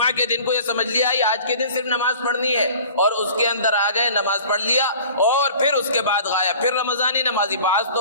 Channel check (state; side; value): inverted; both; correlation -0.45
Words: کے دن کو یہ سمجھ لیا کہ آج کے دن صرف نماز پڑھنی ہے، اور اس کے اندر آ گئے، نماز پڑھ لیا، اور پھر اس کے بعد غائب، پھر رمضانی نمازی۔ بعض